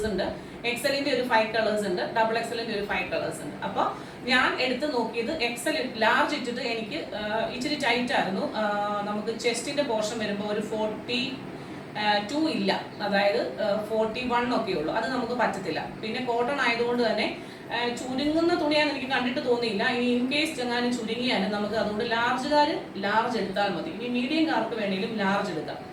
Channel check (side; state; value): both; identical; correlation 1.00